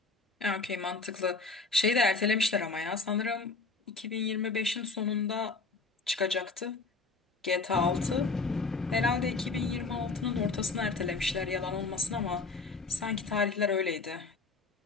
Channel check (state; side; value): quieter; right; 4.1 dB